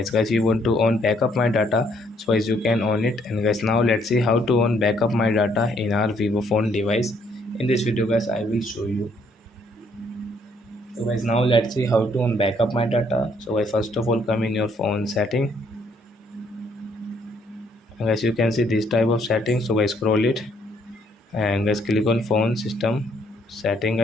Guys, you want to own backup my data, so as you can own it. And guys, now let's see how to own backup my data in our vivo phone device. In this video guys, I will show you. So guys, now let's see how to own backup my data. So guys, first of all, come in your phone setting. And guys, you can see this type of setting. So guys, scroll it and guys, click on phone system setting.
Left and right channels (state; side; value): normal; both; correlation 0.68